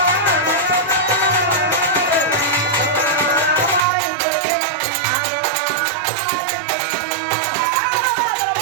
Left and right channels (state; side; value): drops out; left; at 3.9 s